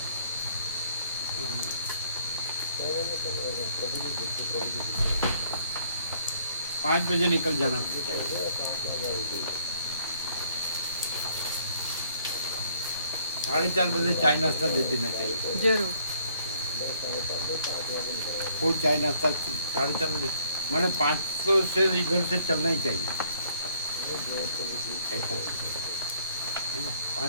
5 बजे निकल जाना चाहिए। 4:30 बजे चाय नाश्ता दे देना चाहिए। જરૂર फुल चाय नाश्ता 4:30 बजे, मैंने 500 से इधर से चलना ही चाहिए ऐसा है ना।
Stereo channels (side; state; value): both; inverted; correlation -0.64